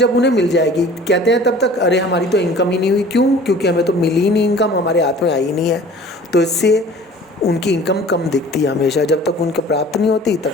उन्हें मिल जाएगी, कहते हैं तब तक अरे हमारी तो इनकम ही नहीं हुई, क्यों, क्योंकि हमें तो मिली ही नहीं इनकम, हमारे हाथ में आई नहीं है। तो इससे उनकी इनकम कम दिखती है हमेशा, जब तक उनको प्राप्त नहीं होती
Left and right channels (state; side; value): normal; both; correlation 0.47